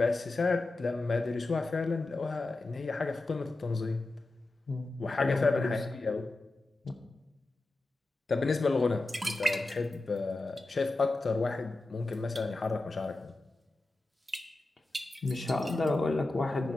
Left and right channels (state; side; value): quieter; right; 3.0 dB